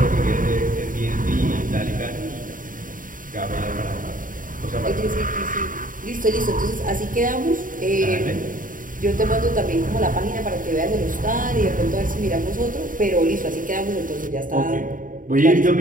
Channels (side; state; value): left; late; 0.39 ms